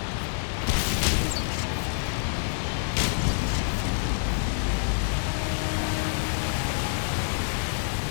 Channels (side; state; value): right; silent; digital silence